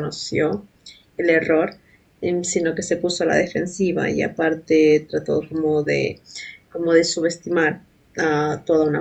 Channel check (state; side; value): identical; both; correlation 1.00